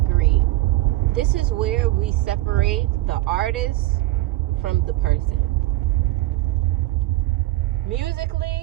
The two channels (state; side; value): quieter; left; 17.4 dB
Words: This is where we separate the artist from the person.